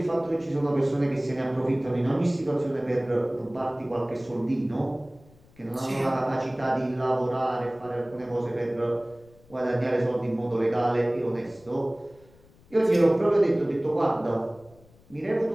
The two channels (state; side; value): noise; left; rumble, 27 dB below the sound